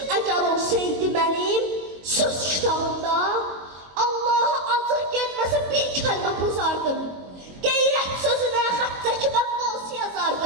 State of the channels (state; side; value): late; left; 22 ms